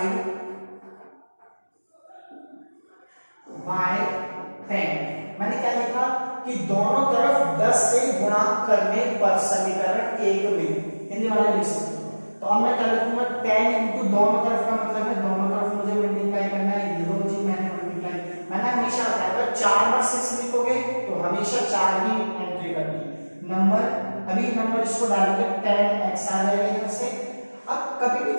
by 10। मैंने क्या लिखा कि दोनों तरफ 10 से गुणा करने पर समीकरण 1 में, हिंदी वाले लिख सकते हो। तो अब मैं क्या लिखूंगा, 10 इनटू दोनों तरफ का मतलब है दोनों तरफ मुझे मल्टीप्लाई करना है, ये दो चीज मैंने मल्टीप्लाई, मैंने हमेशा बताया अगर 4 बार 6 लिखोगे तो हमेशा 4 ही एंट्री करनी है। नंबर, अभी नंबर इसको डालोगे 10x आ जाएगा इधर से। अब कभी भी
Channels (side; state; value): both; inverted; correlation -1.00